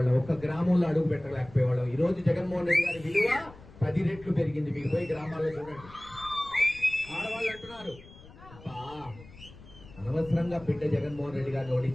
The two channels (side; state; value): left; noise; rumble, 20 dB below the sound